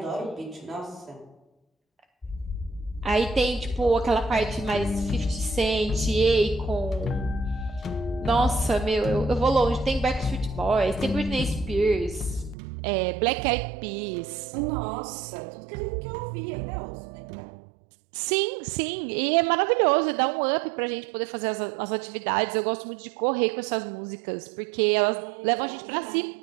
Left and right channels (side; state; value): left; drops out; at 12.6 s